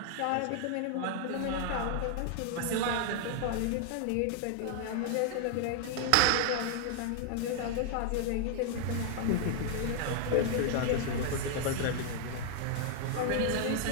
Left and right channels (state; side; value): different; both; correlation 0.00